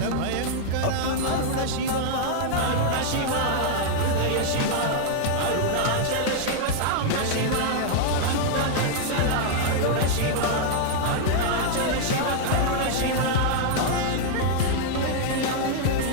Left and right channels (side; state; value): both; different; correlation -0.01